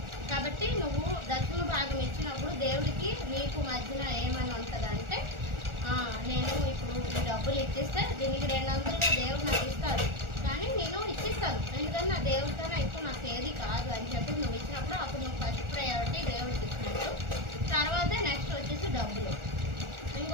కాబట్టి నువ్వు దక్షిణ భాగం ఇచ్చినప్పుడు దేవుడికి నీకు మధ్యన ఏమని ఉంటుందంటే, నేను ఇప్పుడు ఈ డబ్బులు ఇచ్చిస్తే దీనికి 200గా దేవుడు నాకు ఇస్తాడు, కానీ నేను ఇచ్చిస్తాను ఎందుకంటే నా దేవుడికన్నా ఎక్కువ నాకు ఏది కాదు అని చెప్పి నువ్వు ఇచ్చినప్పుడు అప్పుడు నువ్వు ఫస్ట్ ప్రయారిటీ దేవుడికి ఇచ్చినట్టు. తర్వాత నెక్స్ట్ వచ్చేసి డబ్బులు.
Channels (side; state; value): left; late; 1.4 ms